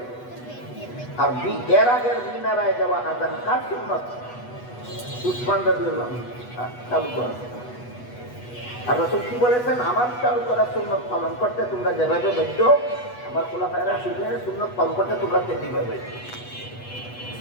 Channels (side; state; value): right; late; 8.2 ms